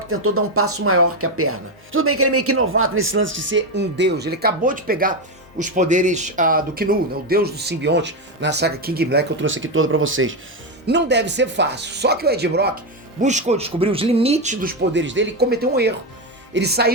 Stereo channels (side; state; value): both; normal; correlation 0.09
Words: tentou dar um passo maior que a perna. Tudo bem que ele é meio que novato nesse lance de ser um deus. Ele acabou de pegar os poderes do Knu, né, o deus do simbionte, na saga King in Black, que eu trouxe aqui toda pra vocês. Não deve ser fácil, só que o Ed Brock buscou descobrir os limites dos poderes dele e cometeu um erro. Ele